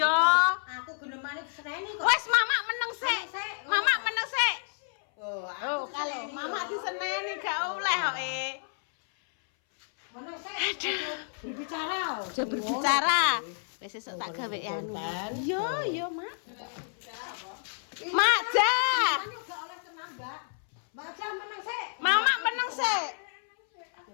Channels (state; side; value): silent; right; 58 dB below the other